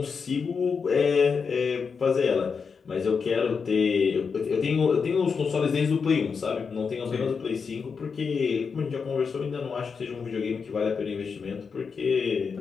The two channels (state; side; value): quieter; right; 5.6 dB